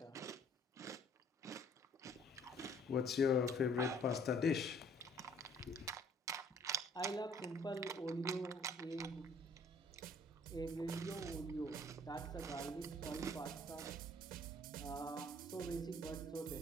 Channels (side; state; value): both; normal; correlation 0.57